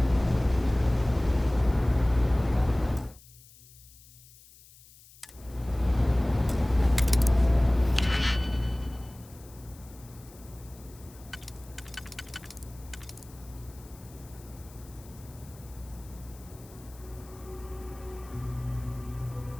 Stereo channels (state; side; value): noise; left; hiss, 23 dB below the sound